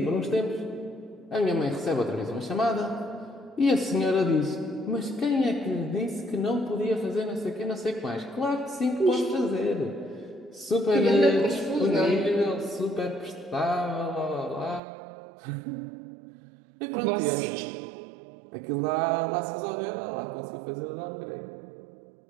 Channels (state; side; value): drops out; left; at 14.8 s